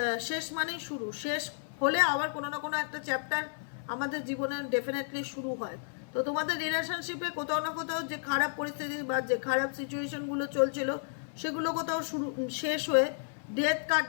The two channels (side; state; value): right; silent; digital silence